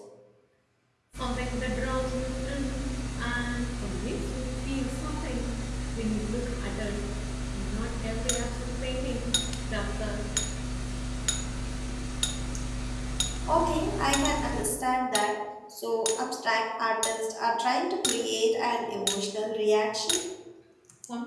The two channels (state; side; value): identical; both; correlation 1.00